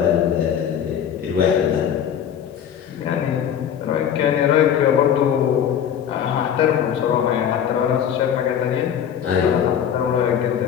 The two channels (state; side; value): quieter; right; 9.0 dB